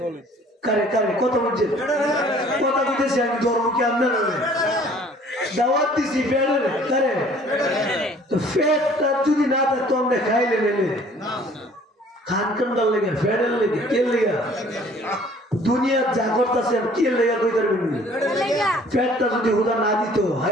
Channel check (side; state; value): both; normal; correlation 0.54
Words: কারে কারে কথা বলছেন কথা বলতেছি আমি ধর্ম কি আপনার দাওয়াত দিছি ফেডে কারে তো ফেডটা যদি না থাকতো আমরা খাইলে নেলে খান কান্ডার লেগে ফেডের লেগে কে লেগে দুনিয়ার যা করতেছে কে লেগে কই পারবেন ফেডটা যদি হুদা না দিত